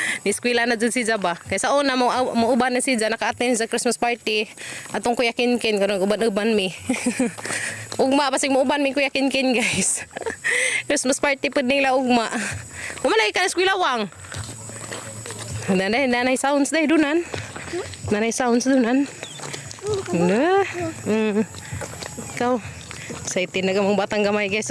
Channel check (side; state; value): both; identical; correlation 1.00